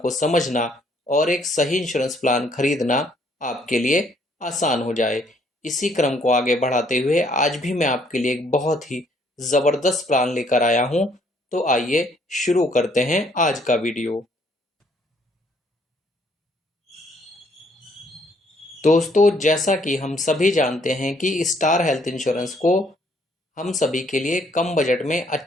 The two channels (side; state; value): both; normal; correlation 0.66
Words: समझना और एक सही इंश्योरेंस प्लान खरीदना आपके लिए आसान हो जाए। इसी क्रम को आगे बढ़ाते हुए आज भी मैं आपके लिए एक बहुत ही ज़बरदस्त प्लान लेकर आया हूं। तो आइए शुरू करते हैं आज का वीडियो। दोस्तों, जैसा कि हम सभी जानते हैं कि स्टार हेल्थ इंश्योरेंस को हम सभी के लिए कम बजट में